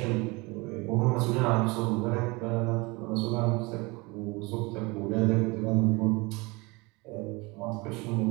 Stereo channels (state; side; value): quieter; left; 25.5 dB